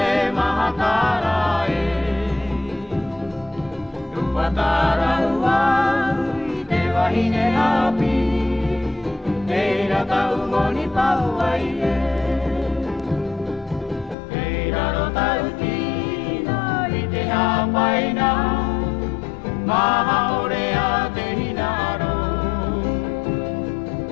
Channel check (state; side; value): drops out; right; at 14.2 s